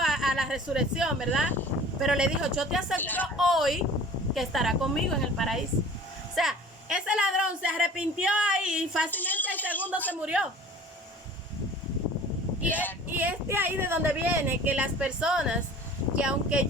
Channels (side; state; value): both; normal; correlation 0.45